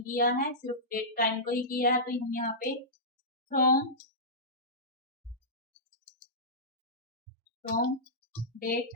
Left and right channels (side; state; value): both; normal; correlation -0.16